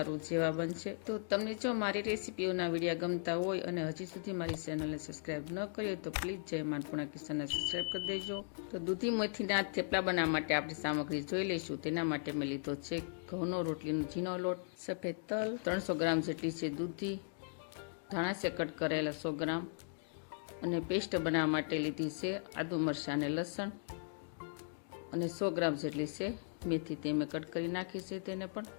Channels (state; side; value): silent; right; digital silence